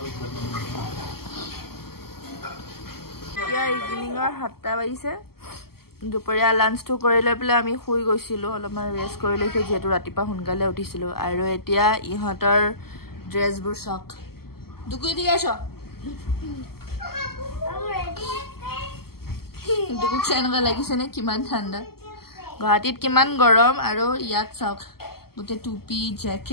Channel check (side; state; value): right; late; 0.95 ms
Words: এতিয়া ইভিনিঙৰ 7টা বাজিছে দুপৰীয়া লাঞ্চটো কৰি লৈ পেলাই আমি শুই গৈছিলোঁ অলপমান ৰেষ্ট কৰি লৈছোঁ যিহেতু ৰাতিপুৱা সোনকালে উঠিছিলোঁ আৰু এতিয়া ইহঁতৰ ড্ৰেছবোৰ চাওক দুকুই দি আছ দুকুক এনেকুৱা লাগিছেনে কিমান ঠাণ্ডা গুৱাহাটীত কিমান গৰম আৰু ইয়াত চাওক গোটেই টুপি